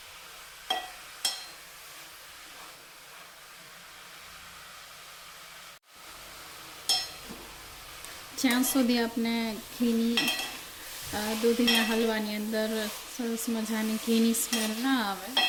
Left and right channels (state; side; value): identical; both; correlation 1.00